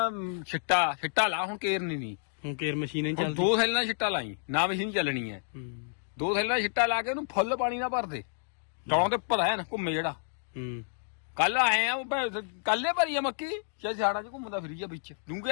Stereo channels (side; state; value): right; silent; digital silence